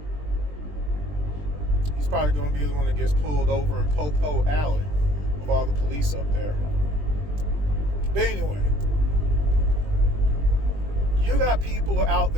He's probably going to be the one that gets pulled over in Popo Alley with all the police up there. But anyway. You got people out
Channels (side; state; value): left; late; 20 ms